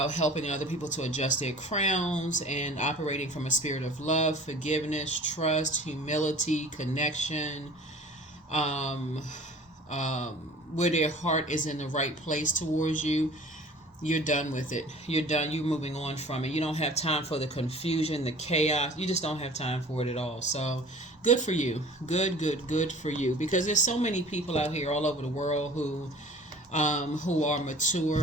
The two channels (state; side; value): normal; both; correlation 0.46